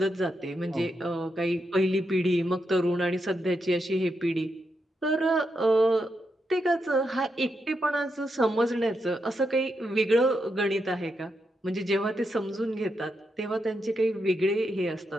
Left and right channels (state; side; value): normal; both; correlation 0.83